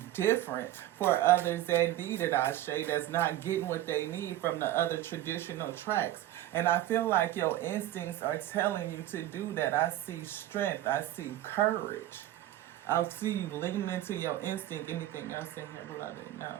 different for others that need it, Ashe, that's not getting what they need from the other traditional tracks. And I feel like your instincts are telling you to do that. I see strength. I see courage. I see you leaning into your instinct. Anything else in here, beloved? No.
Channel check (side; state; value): left; quieter; 13.8 dB